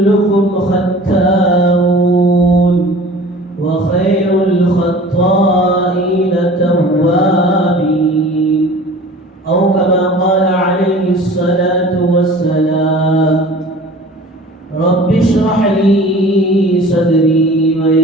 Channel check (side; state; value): both; normal; correlation 0.44